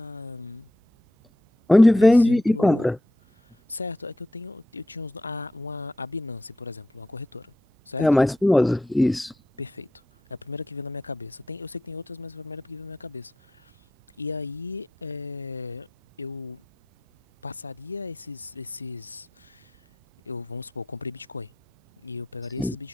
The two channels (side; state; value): both; normal; correlation 0.85